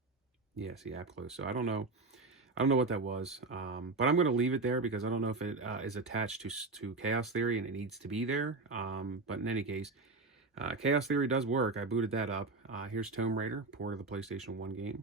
Yeah, see, app closed. So I don't know what that was, but I'm going to leave it there because I don't know if it is attached to Chaos Theory and it needs to be there. But in any case, Chaos Theory does work. I booted that up. Here's Tomb Raider, port of the PlayStation 1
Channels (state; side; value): quieter; left; 3.6 dB